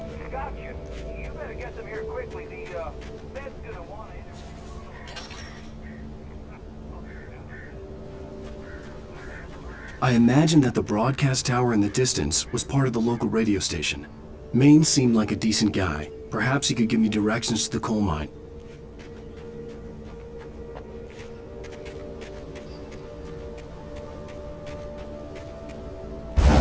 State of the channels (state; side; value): identical; both; correlation 1.00